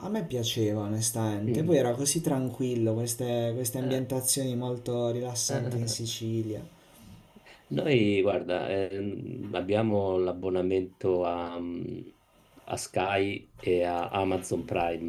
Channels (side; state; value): both; identical; correlation 1.00